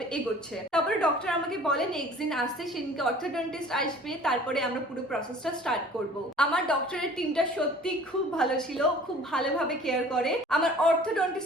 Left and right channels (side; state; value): both; normal; correlation 0.48